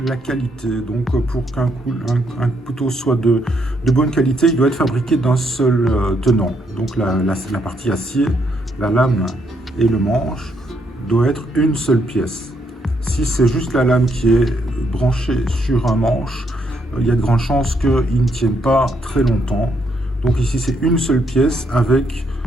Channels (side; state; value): both; normal; correlation 0.75